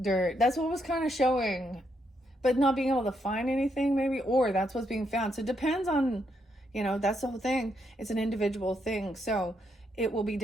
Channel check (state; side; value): normal; both; correlation 0.77